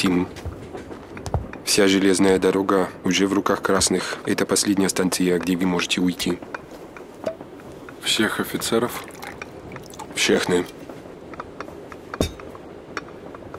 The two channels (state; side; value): identical; both; correlation 1.00